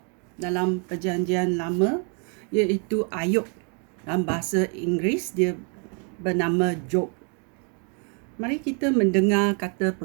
dalam perjanjian lama iaitu Ayub. Dalam bahasa Inggeris dia bernama Job. Mari kita mendengar kata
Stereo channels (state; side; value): quieter; left; 38.6 dB